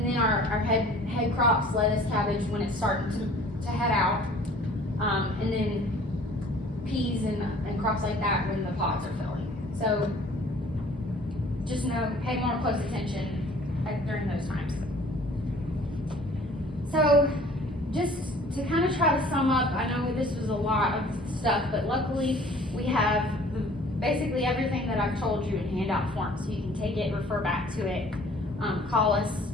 then our head crops, lettuce, cabbage, when it's starting to head out. And then peas and crops like that when the pods are filling. So just pay more close attention during those times. So just to kind of try to sum up, I know this was a lot of stuff, but luckily we have basically everything that I've told you in handout form, so you can take it, refer back to it, call us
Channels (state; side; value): normal; both; correlation 0.51